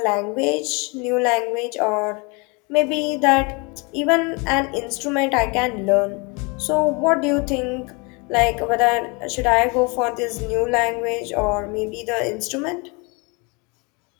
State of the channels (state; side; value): quieter; right; 29.9 dB